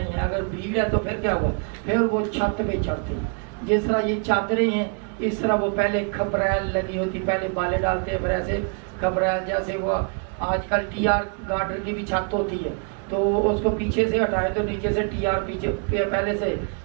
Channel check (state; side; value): quieter; left; 36.7 dB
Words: है, अगर भीड़ है तो फिर क्या हुआ? फिर वो छत पे चढ़ते, जिस तरह ये चादरें हैं इस तरह वो पहले खपरैल लगी होती, पहले बाले डालते हैं, फिर ऐसे खपरैल, जैसे वो आजकल टीआर गार्डर की भी छत होती है तो उसको पीछे से हटाएं तो नीचे से टीआर पीछे पहले से